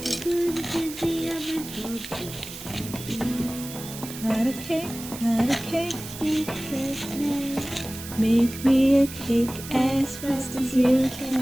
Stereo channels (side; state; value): right; noise; hiss, 12 dB below the sound